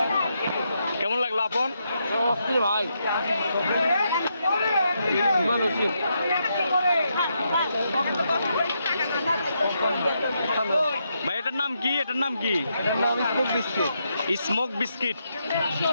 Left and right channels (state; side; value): inverted; both; correlation -0.81